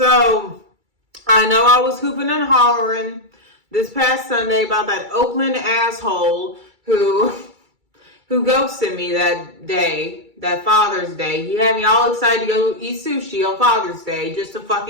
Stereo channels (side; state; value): left; late; 2.3 ms